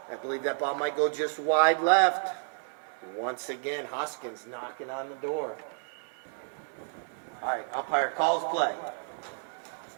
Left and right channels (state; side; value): silent; left; 57 dB below the other